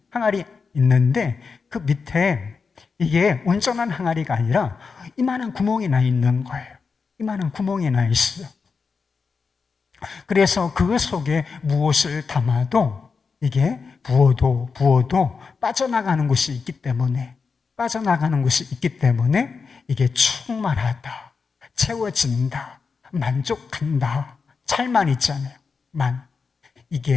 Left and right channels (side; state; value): right; quieter; 5.1 dB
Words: 항아리 있는데 그 밑에 이게 온전한 항아리가 아니라 이만한 구멍이 나 있는 거예요. 이만한 구멍이 나 있어요. 그래서 그 속에 무엇을 담아도 이게 부어도 빠져나가는 곳이 있기 때문에 이게 충만하다, 채워진다, 만족한다, 찰만 있잖아요.